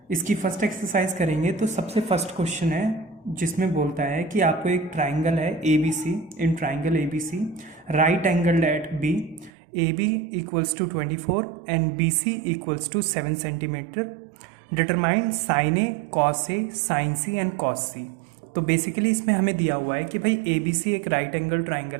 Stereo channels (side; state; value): left; drops out; at 9.5 s